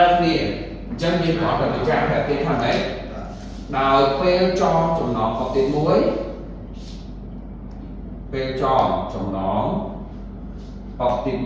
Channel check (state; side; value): identical; both; correlation 1.00